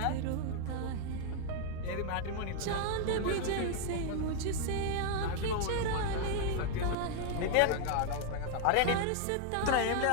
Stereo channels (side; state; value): both; different; correlation 0.00